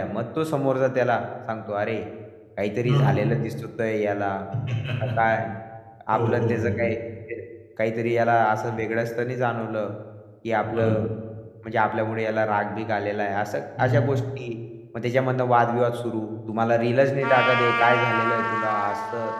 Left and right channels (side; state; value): both; identical; correlation 1.00